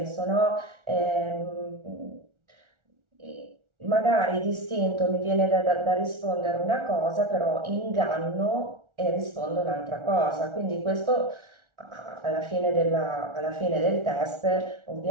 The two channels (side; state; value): left; late; 1.4 ms